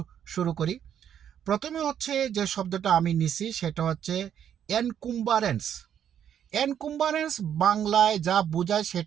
শুরু করি। প্রথমে হচ্ছে যে শব্দটা আমি নিছি সেটা হচ্ছে এনকুম্বারেন্স। এনকুম্বারেন্স বাংলায় যা বোঝায়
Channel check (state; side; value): quieter; left; 9.3 dB